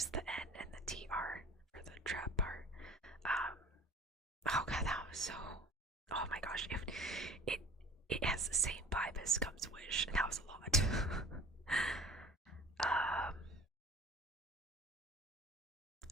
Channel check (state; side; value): normal; both; correlation 0.44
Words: the N and the TR for the trap part. Um, oh god, that was so. Oh my gosh, if it it has the same vibe as Scum's Wish, and that was a lot. um,